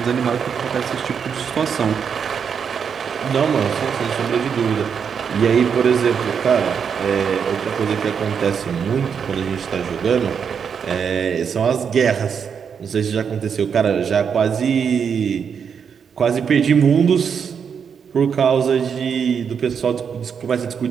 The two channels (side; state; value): left; quieter; 6.9 dB